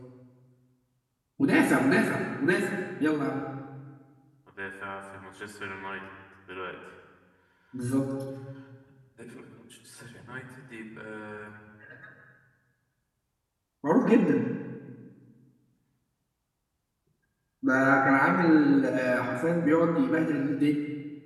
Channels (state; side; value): identical; both; correlation 1.00